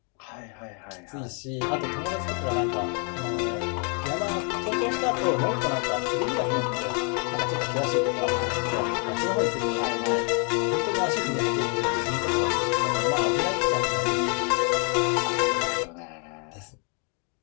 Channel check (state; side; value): quieter; right; 38.5 dB